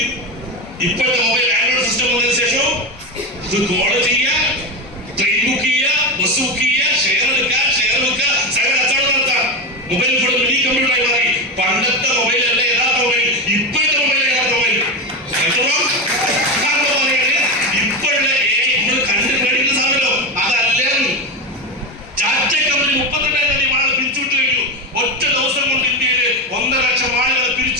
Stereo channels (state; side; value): normal; both; correlation 0.17